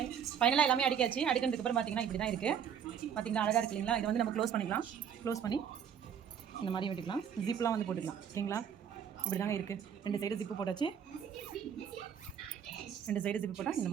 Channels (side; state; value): left; quieter; 8.2 dB